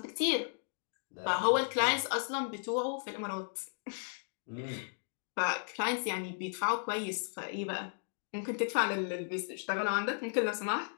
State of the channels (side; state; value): right; silent; digital silence